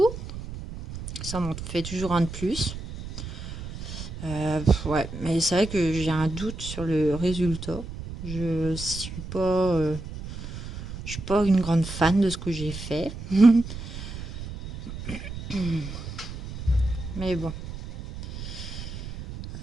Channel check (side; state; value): right; noise; rumble, 10 dB below the sound